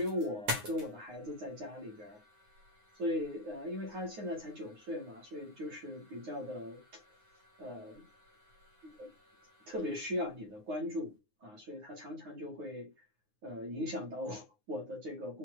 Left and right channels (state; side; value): late; left; 9.6 ms